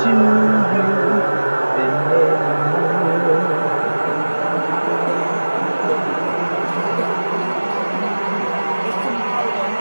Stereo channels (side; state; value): both; inverted; correlation -1.00